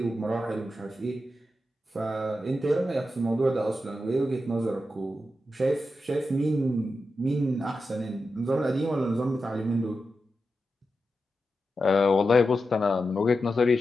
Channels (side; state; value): both; normal; correlation 0.89